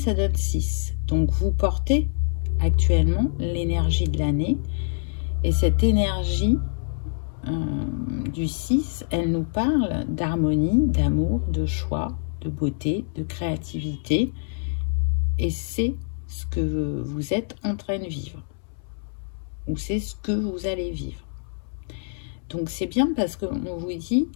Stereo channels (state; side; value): silent; right; 62 dB below the other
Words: donne 6. Donc vous portez actuellement l'énergie de l'année et cette énergie du 6, elle nous parle d'harmonie, d'amour, de choix, de beauté, de créativité. Et c'est ce que vous êtes en train de vivre. Ou c'est ce que vous allez vivre. Donc c'est bien parce qu'on vous dit